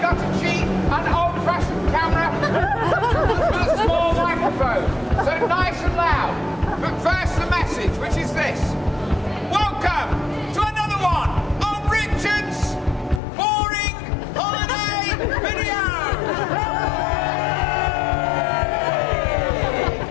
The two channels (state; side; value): drops out; right; at 13.2 s